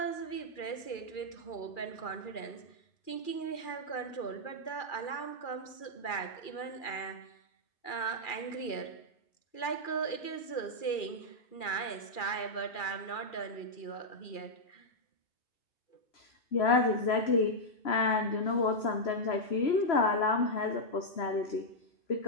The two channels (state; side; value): late; right; 2.4 ms